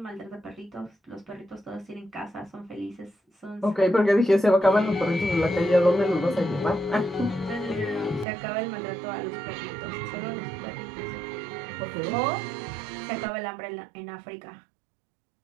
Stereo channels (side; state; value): left; drops out; at 8.2 s